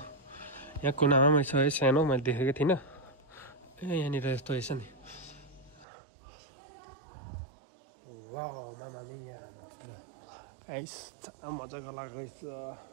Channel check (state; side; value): drops out; left; at 5.9 s